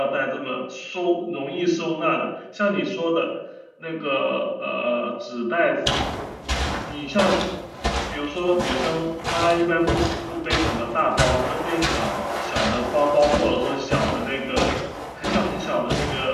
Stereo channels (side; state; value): both; identical; correlation 1.00